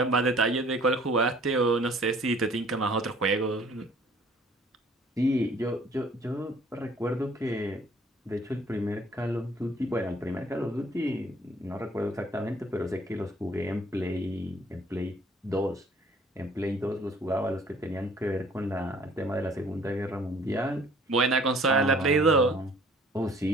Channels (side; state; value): both; normal; correlation 0.55